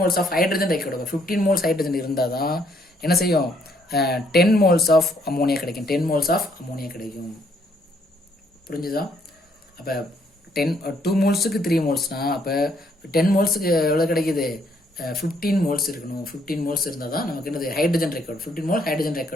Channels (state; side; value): normal; both; correlation 0.69